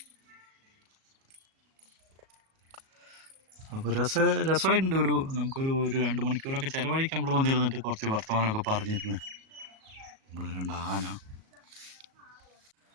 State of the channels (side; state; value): left; late; 37 ms